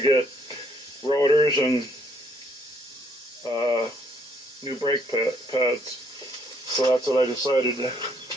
get rotors and new brake pads. So that's what I decided to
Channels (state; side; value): normal; both; correlation 0.68